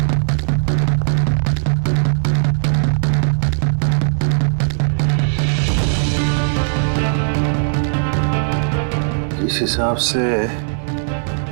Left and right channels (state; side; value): silent; left; digital silence